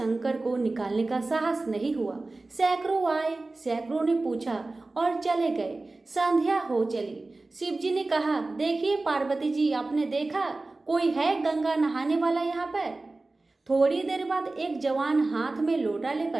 को निकालने का साहस नहीं हुआ। सैकड़ों आए, सैकड़ों ने पूछा और चले गए। संध्या हो चली। शिव जी ने कहा, देखिए पार्वती जी, आपने देखा कोई है गंगा नहाने वाला यहाँ पर? थोड़ी देर बाद एक जवान हाथ में लोटा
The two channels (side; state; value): left; quieter; 3.2 dB